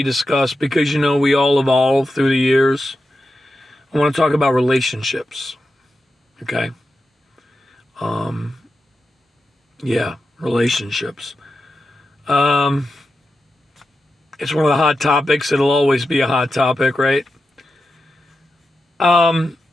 discussed because, we all evolve through the years. I want to talk about relationships, okay? Relationships. It's one of the hot topics. It'll always be a hot topic, right? The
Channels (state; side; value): normal; both; correlation 0.89